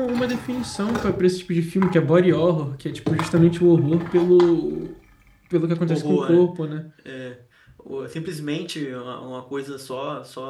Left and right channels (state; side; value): identical; both; correlation 1.00